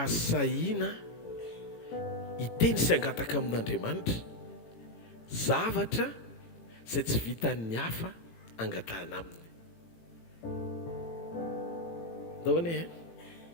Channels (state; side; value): late; right; 18 ms